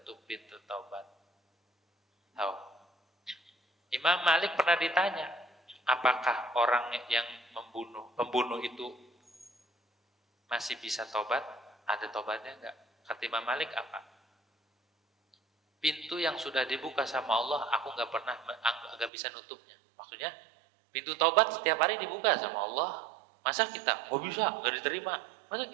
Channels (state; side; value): drops out; left; at 19.1 s